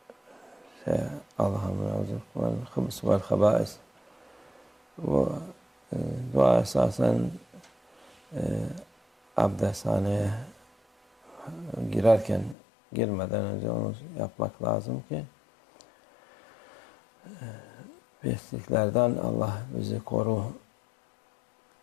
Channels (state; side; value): drops out; right; at 12.6 s